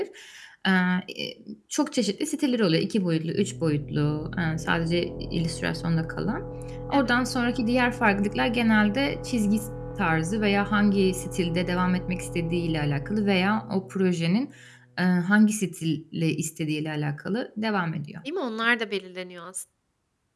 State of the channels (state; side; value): identical; both; correlation 1.00